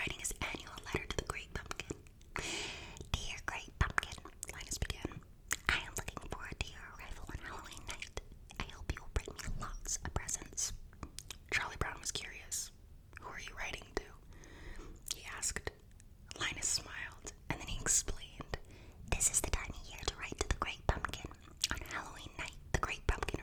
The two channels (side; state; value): both; identical; correlation 1.00